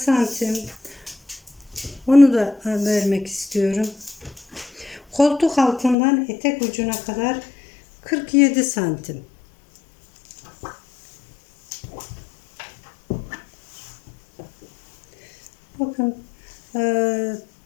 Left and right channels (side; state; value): right; drops out; at 6.0 s